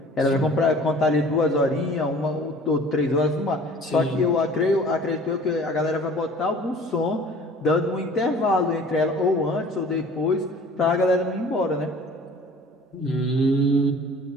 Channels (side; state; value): both; normal; correlation 0.47